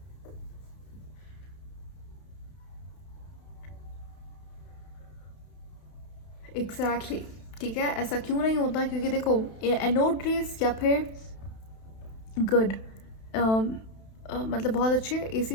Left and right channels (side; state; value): right; late; 31 ms